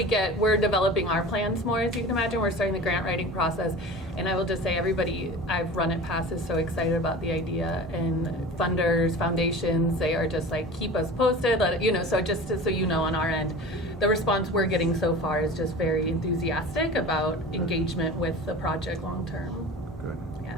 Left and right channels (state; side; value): normal; both; correlation 0.37